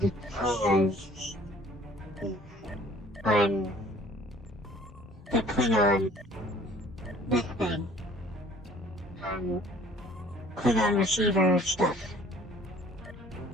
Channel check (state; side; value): normal; both; correlation 0.53